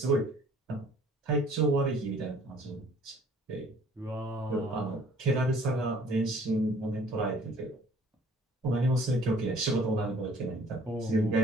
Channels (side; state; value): both; normal; correlation 0.55